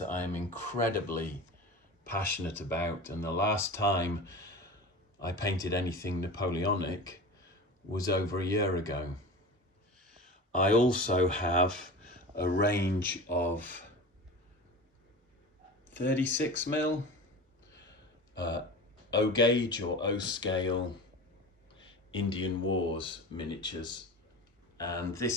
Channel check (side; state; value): both; normal; correlation 0.32